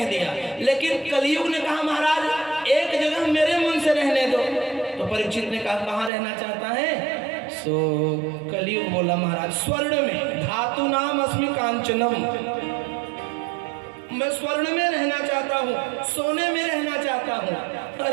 दिया, लेकिन कलयुग ने कहा महाराज एक जगह मेरे मन से रहने दो। तो परीक्षित ने कहा कहाँ रहना चाहता है? सो कलयुग बोला महाराज स्वर्ण में, धातु नाम अस्मि कांचनम, मैं स्वर्ण में रहना चाहता हूँ, सोने में रहना चाहता हूँ।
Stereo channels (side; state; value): left; drops out; at 6.1 s